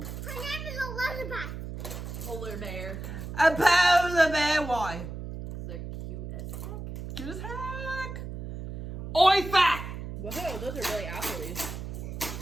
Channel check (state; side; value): noise; right; hum, 8 dB below the sound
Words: Her name is Elizabeth. Polar bear. A polar bear. Why? They're cute as heck. Cute as heck. Oifa, Whoa, those are really appley.